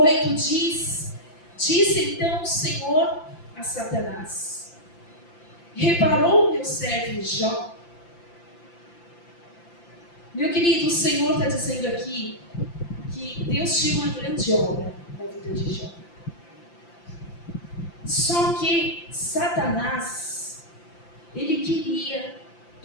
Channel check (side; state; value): right; late; 5.8 ms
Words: 8 disse então o Senhor a Satanás: reparou o meu servo Jó? Meu querido, o Senhor está dizendo aqui que Deus tinha uma grande obra na vida de Jó. Só que Satanás, ele queria